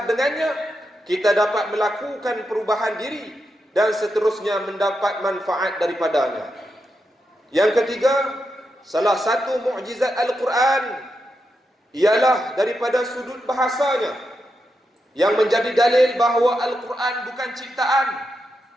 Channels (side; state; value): both; normal; correlation 0.86